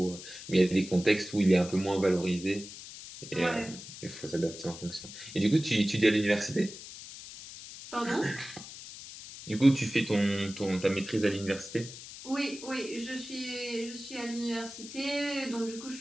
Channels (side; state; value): left; noise; hiss, 13 dB below the sound